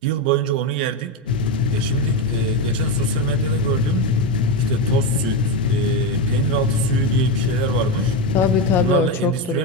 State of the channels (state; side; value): normal; both; correlation 0.12